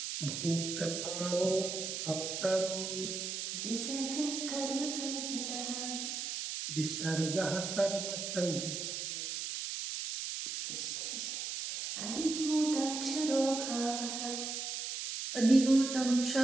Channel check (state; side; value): noise; right; hiss, 4 dB below the sound